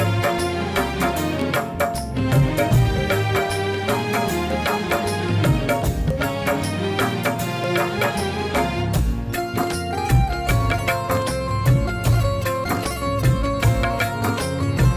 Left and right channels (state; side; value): identical; both; correlation 1.00